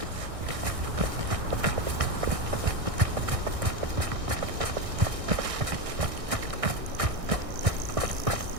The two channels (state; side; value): late; left; 1.6 ms